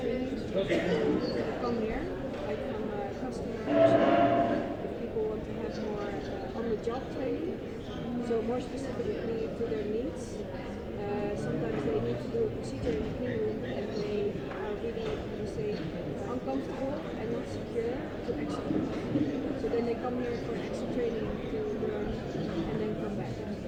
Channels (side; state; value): both; identical; correlation 1.00